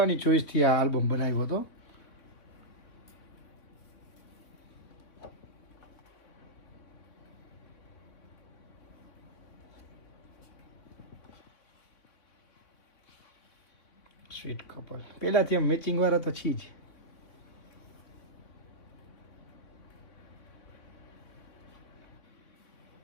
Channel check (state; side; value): late; right; 3.7 ms